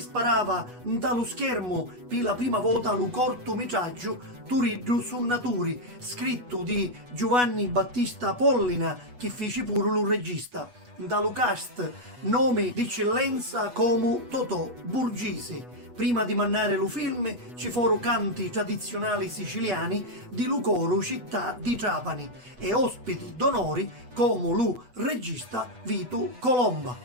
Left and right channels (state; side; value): late; left; 8.2 ms